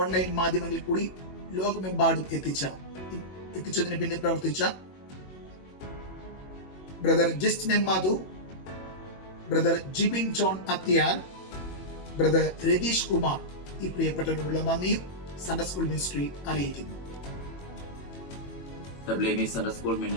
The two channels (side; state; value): right; late; 21 ms